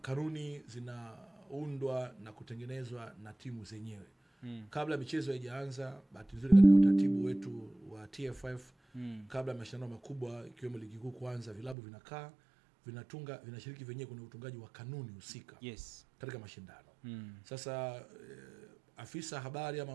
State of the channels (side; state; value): left; drops out; at 11.8 s